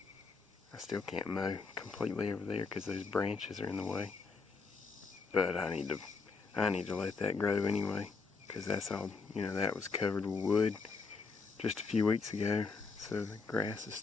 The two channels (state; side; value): quieter; right; 4.6 dB